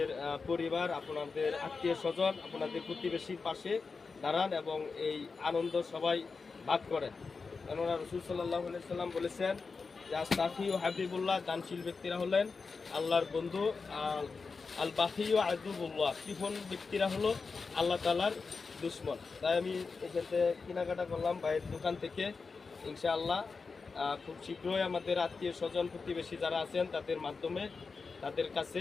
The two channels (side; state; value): right; quieter; 4.6 dB